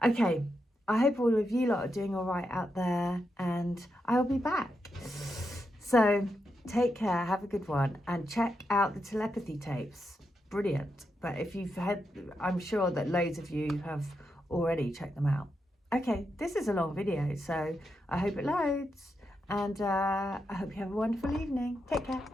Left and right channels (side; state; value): both; normal; correlation 0.85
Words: Okay, I hope all of you lot are doing all right out there, and I'll be back. So take care, have a good one, and check out the telepathy tapes. Brilliant. But if you've had, I'm sure that loads of you have already checked them out. Okay, this is a long video, so I hope it loads, and I hope you have a wonderful evening. Take care.